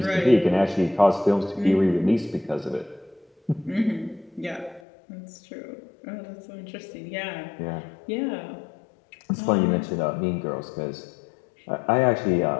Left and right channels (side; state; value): right; drops out; at 4.8 s